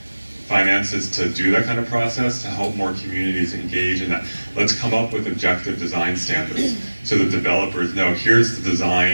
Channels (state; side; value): inverted; both; correlation -1.00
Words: finances to do that kind of process, to help more communities engage in that. Let's come up with objective design standards so that developers know, here's the